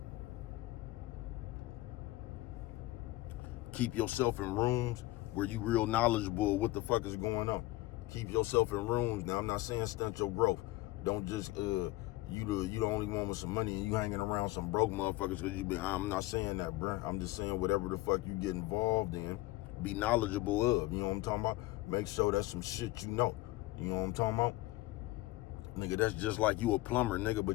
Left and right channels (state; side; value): quieter; right; 18.5 dB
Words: keep yourself in rooms where you real knowledgeable of what the fuck is going on. Keep yourself in rooms. Now, I'm not saying stunt your growth. Don't just you the only one with some money and you hanging around some broke motherfuckers because you be. I'm not saying that, bruh. I'm just saying whatever the fuck you get involved in, be knowledgeable of. You know what I'm talking about? Make sure that's some shit you know. You know what I'm talking about? Nigga, that's just like you a plumber, nigga,